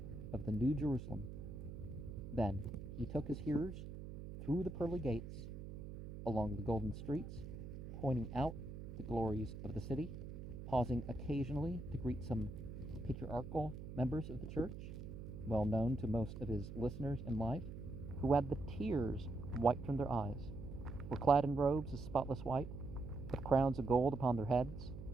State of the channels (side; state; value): right; noise; hum, 9 dB below the sound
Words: of the New Jerusalem. Then he took his hearers through the pearly gates, along the golden streets, pointing out the glories of the city, pausing occasionally to greet some patriarchal members of the church, well known to most of his listeners in life, who had the tears wiped from their eyes, were clad in robes of spotless white, with crowns of gold upon their heads,